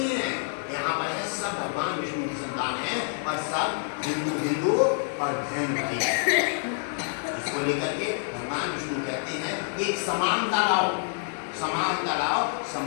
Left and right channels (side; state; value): right; silent; 59 dB below the other